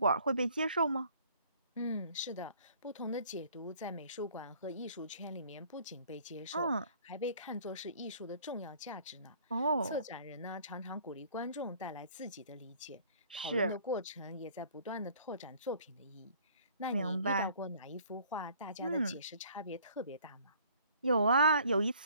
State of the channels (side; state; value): both; inverted; correlation -0.56